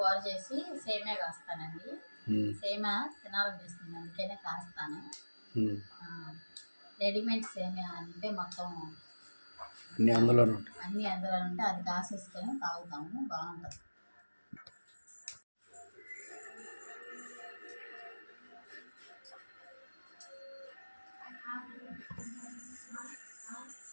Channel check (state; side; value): inverted; both; correlation -1.00